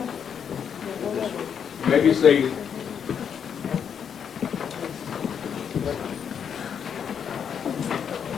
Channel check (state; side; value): quieter; right; 7.7 dB